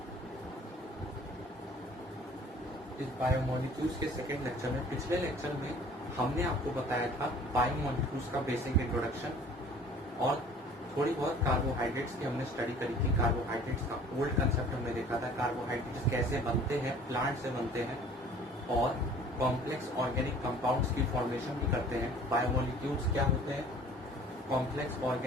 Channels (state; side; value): normal; both; correlation 0.50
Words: इस बायोमोलिक्यूल्स के सेकेंड लेक्चर में। पिछले लेक्चर में हमने आपको बताया था बायोमोलिक्यूल्स का बेसिक इंट्रोडक्शन और थोड़ी बहुत कार्बोहाइड्रेट्स की हमने स्टडी करी थी। कार्बोहाइड्रेट्स का ओल्ड कंसेप्ट हमने देखा था, कार्बोहाइड्रेट्स कैसे बनते हैं, प्लांट से बनते हैं और कॉम्प्लेक्स ऑर्गेनिक कंपाउंड्स की फॉर्मेशन भी करते हैं। बायोमोलिक्यूल्स क्या होते हैं? Complex